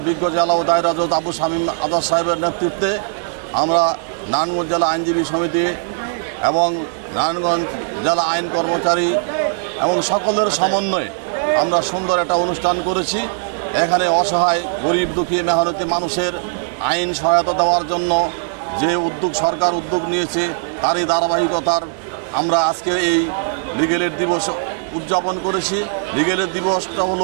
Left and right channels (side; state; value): left; silent; digital silence